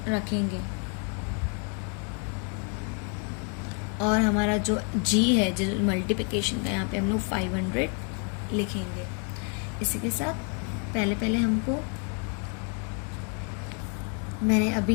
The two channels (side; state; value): right; quieter; 36.5 dB